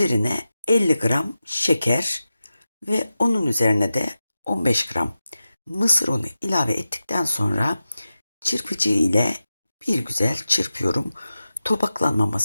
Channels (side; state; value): both; inverted; correlation -0.93